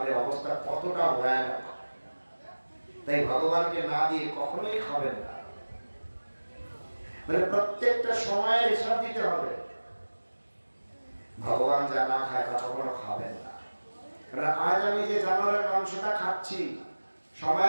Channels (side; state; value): both; inverted; correlation -1.00